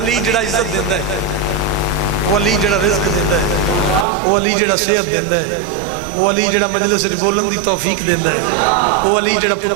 جڑا عزت دیندہ ہے وہ علی جڑا رزق دیندہ ہے وہ علی جڑا صحت دیندہ ہے وہ علی جڑا مجلس بولن دی توفیق دیندہ ہے وہ علی جڑا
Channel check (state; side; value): drops out; left; at 4.0 s